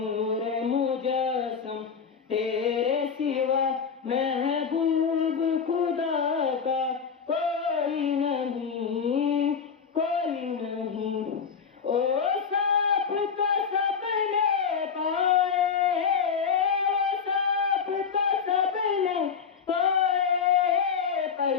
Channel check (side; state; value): right; quieter; 6.3 dB